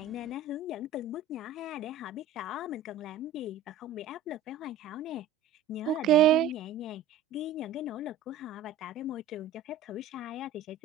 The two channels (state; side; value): quieter; left; 5.5 dB